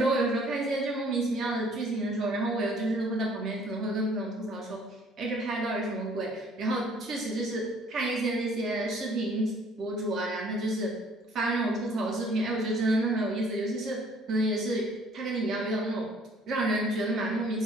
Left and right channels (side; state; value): both; normal; correlation 0.58